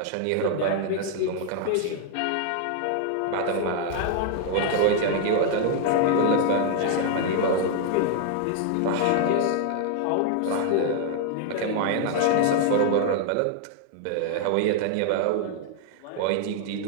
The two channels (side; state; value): both; different; correlation 0.00